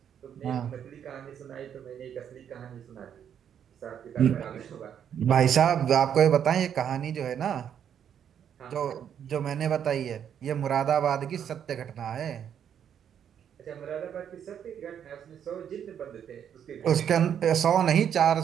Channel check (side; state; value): left; quieter; 8.8 dB